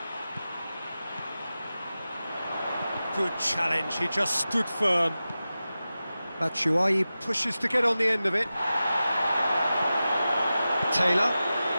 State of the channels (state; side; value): inverted; both; correlation -0.94